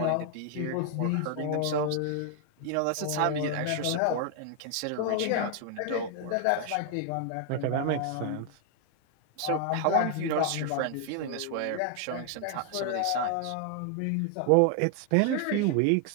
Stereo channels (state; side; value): different; both; correlation 0.00